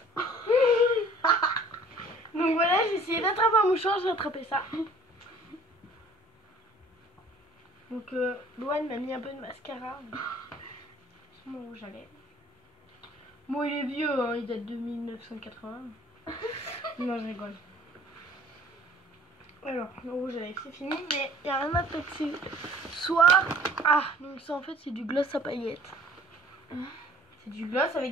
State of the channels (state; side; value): normal; both; correlation 0.52